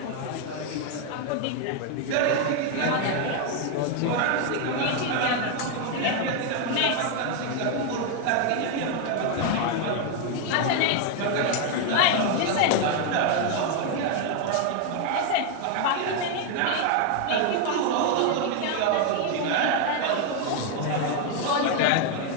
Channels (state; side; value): different; both; correlation 0.01